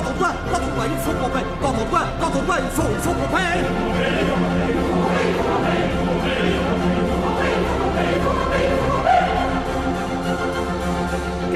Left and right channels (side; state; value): both; identical; correlation 1.00